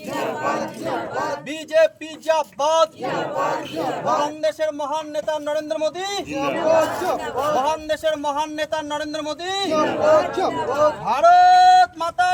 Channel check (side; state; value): both; identical; correlation 1.00